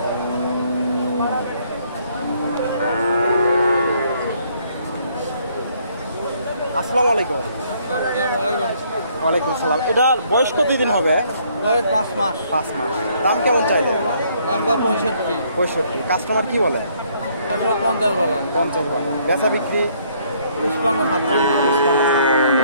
আসসালামু আলাইকুম। ওয়ালাইকুম সালাম। এটার বয়স কতদিন হবে? বয়স 5 মাস। 5 মাস। দাম কেমন চাইলে? দাম 65। 65। কাস্টমার কি বলে? 50 বলে। 50 বলে। বেচা বিক্রি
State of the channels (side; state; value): both; inverted; correlation -0.66